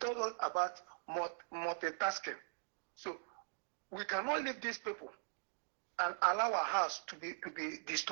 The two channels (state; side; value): silent; left; digital silence